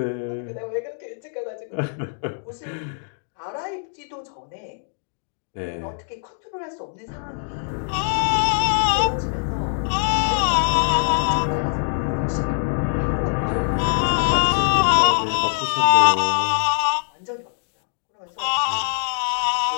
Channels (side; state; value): right; silent; digital silence